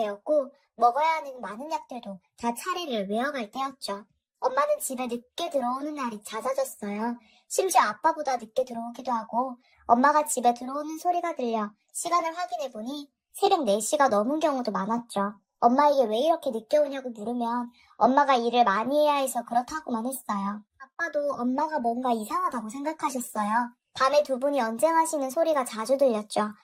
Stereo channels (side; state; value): both; identical; correlation 1.00